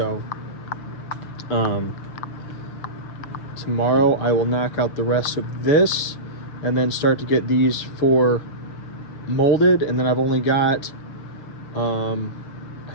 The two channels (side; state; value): right; late; 6.9 ms